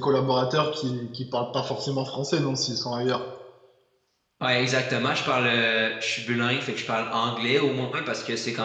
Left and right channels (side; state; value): both; identical; correlation 1.00